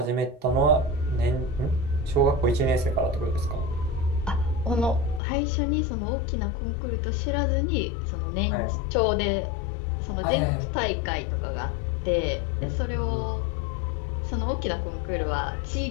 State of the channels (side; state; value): right; drops out; at 5.2 s